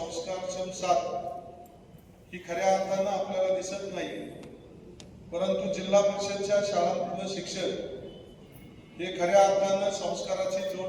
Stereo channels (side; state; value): both; identical; correlation 1.00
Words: साथ ही खऱ्या अर्थानं आपल्याला दिसत नाही। परंतु जिल्हा परिषदच्या शाळांमधलं शिक्षण हे खऱ्या अर्थानं संस्काराची जोड